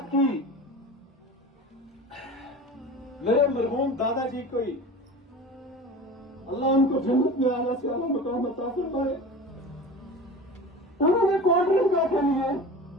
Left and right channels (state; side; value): normal; both; correlation 0.35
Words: کی میرے مرحوم دادا جی کو ہی اللہ ان کو جنت میں آنا سے اللہ مقام عطا فرمائے. انہوں نے کولڈ ڈرنک کے لیے